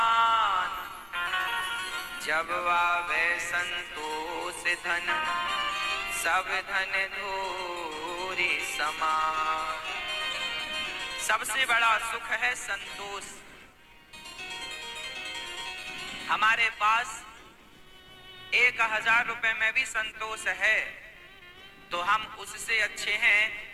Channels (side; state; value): both; identical; correlation 1.00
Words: जब आवे संतोष धन सब धन धूरी समान। सबसे बड़ा सुख है संतोष। हमारे पास 1000 रुपए में भी संतोष है तो हम उससे अच्छे